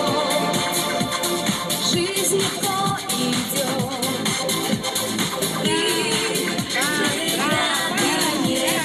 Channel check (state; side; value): identical; both; correlation 1.00